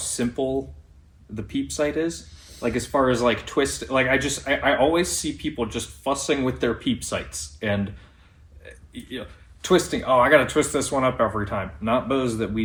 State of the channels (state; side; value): identical; both; correlation 1.00